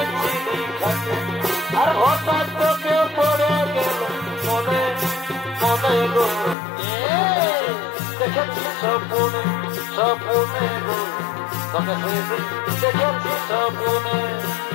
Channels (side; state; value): right; drops out; at 6.6 s